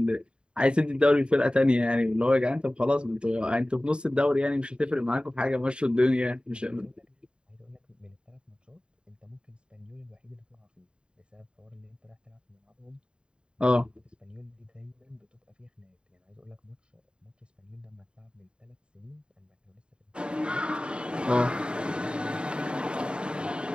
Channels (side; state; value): left; late; 0.052 ms